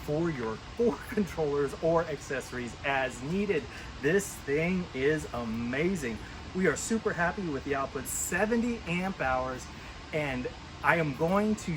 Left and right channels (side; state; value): both; identical; correlation 1.00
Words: for your 4 controllers or accessories as needed. This thing is amazing. We are super happy with the output, 70 amp hours, and I am going to